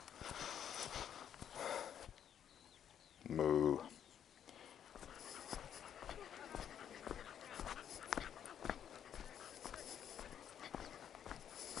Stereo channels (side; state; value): right; quieter; 9.3 dB